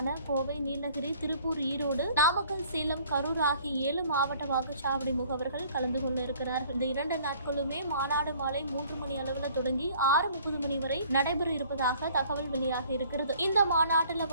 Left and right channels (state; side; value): inverted; both; correlation -0.55